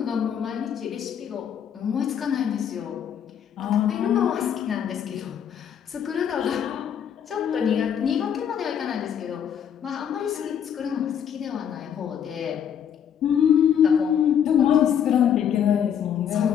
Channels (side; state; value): right; quieter; 8.6 dB